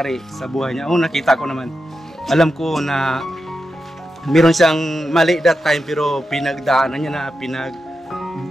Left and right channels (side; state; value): both; normal; correlation 0.89